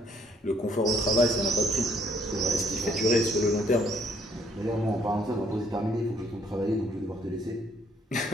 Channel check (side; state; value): both; normal; correlation 0.65